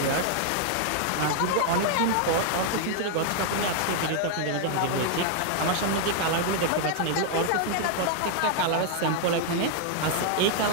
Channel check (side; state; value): both; different; correlation 0.00